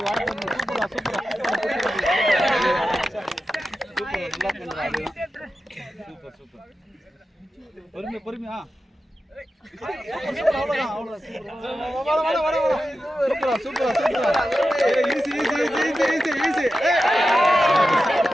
சூப்பரா சூப்பர் சூப்பர் பொறுமையா பொறுமையா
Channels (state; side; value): normal; both; correlation 0.92